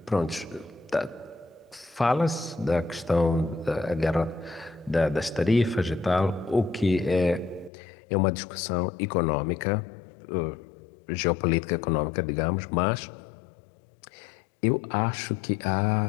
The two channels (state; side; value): drops out; right; at 7.7 s